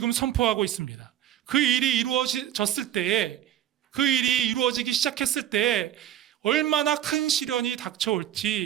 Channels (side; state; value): left; quieter; 11.4 dB